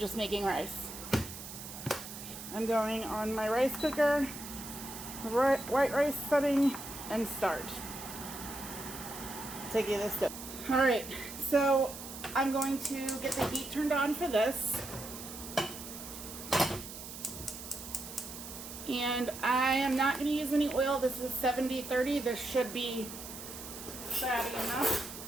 making rice. I'm going on my rice cooker, white rice setting, and start. Take you this step. All right, so I'm going to get the heat turned on for this. And I am not going to use any oil. This is 70-30. This should be fatty enough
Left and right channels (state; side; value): noise; right; hiss, 11 dB below the sound